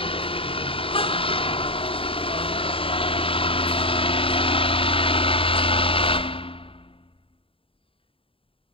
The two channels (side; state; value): right; late; 0.26 ms